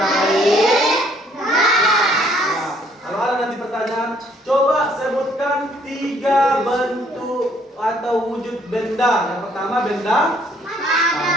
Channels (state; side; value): normal; both; correlation 0.64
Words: Kalau ada nanti pertanyaan, coba sebutkan 3 bentuk atau wujud benda. Yang pertama benda